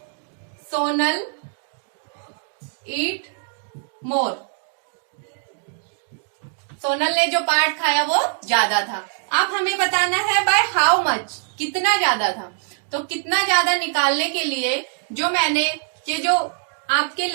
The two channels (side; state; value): left; silent; digital silence